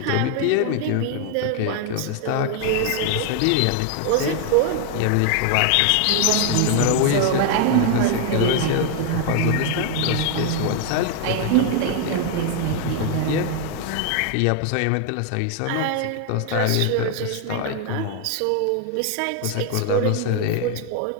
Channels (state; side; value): different; both; correlation 0.00